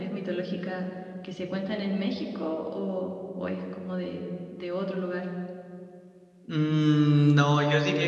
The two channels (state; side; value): identical; both; correlation 1.00